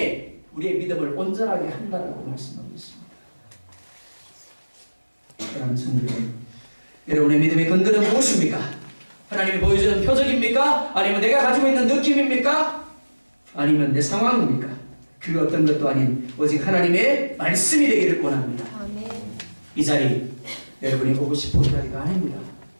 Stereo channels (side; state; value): both; inverted; correlation -1.00